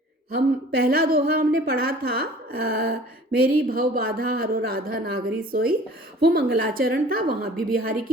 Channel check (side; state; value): both; normal; correlation 0.48